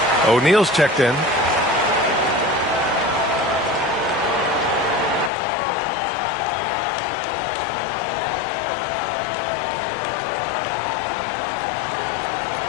O'Neal's checked in.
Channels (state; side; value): drops out; right; at 5.3 s